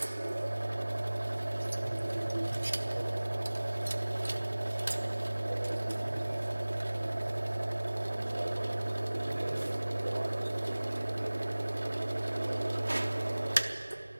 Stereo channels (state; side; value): inverted; both; correlation -1.00